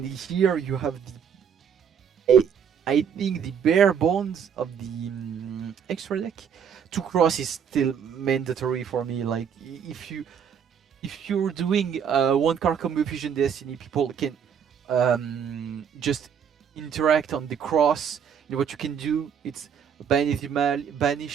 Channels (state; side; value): quieter; left; 7.7 dB